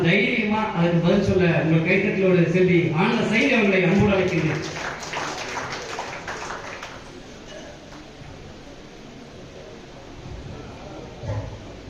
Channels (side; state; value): both; identical; correlation 1.00